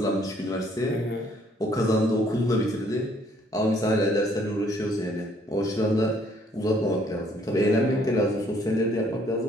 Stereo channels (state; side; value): normal; both; correlation 0.64